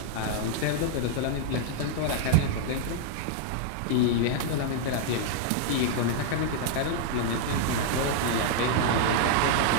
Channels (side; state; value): both; different; correlation -0.01